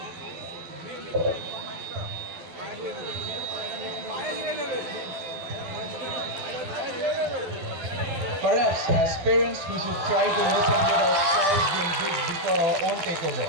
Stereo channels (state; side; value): late; left; 12 ms